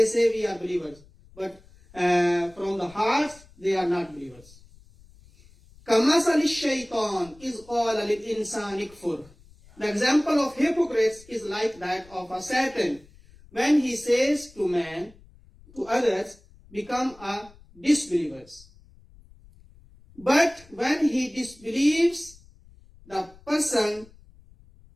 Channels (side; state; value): left; noise; rumble, 25 dB below the sound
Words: say we are believers. But from the hearts they are not believers. كَمَثَلِ الشَّيْطَانِ إِذْ قَالَ لِلْإِنسَانِ اكْفُرْ. The example of hypocrites is like that of a Satan. When he says to man, to others, become a disbelievers. But when he disbelieves, the person,